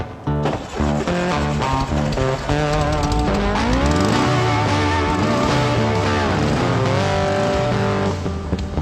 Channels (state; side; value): identical; both; correlation 1.00